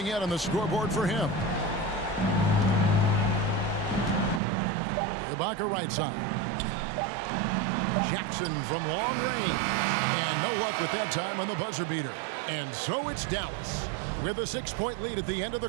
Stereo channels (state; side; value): drops out; left; at 4.4 s